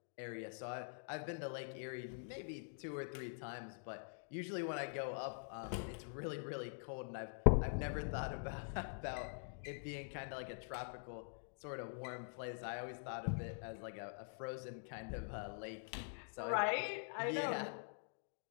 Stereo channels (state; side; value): silent; right; digital silence